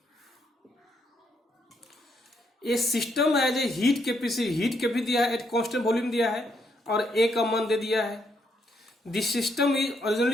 A system has a heat capacity दिया है, एट कांस्टेंट वॉल्यूम दिया है और ए का मान दे दिया है। This system is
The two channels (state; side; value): normal; both; correlation 0.75